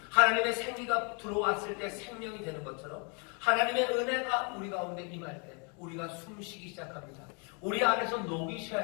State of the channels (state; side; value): quieter; right; 35.8 dB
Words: 하나님의 생기가 들어왔을 때 생명이 되는 것처럼 하나님의 은혜가 우리 가운데 임할 때 우리가 숨쉬기 시작합니다. 우리 안에서 녹이 쉬어야